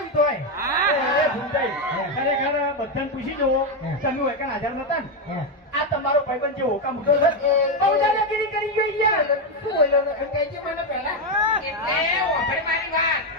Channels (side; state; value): both; normal; correlation 0.06